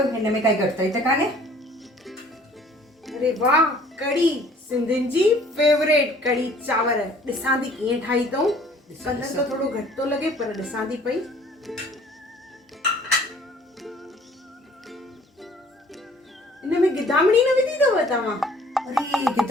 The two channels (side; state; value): both; normal; correlation 0.55